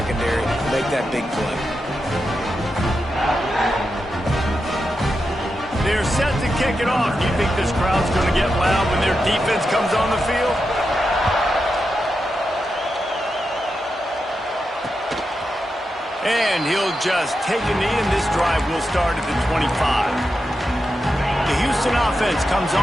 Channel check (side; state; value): both; normal; correlation 0.88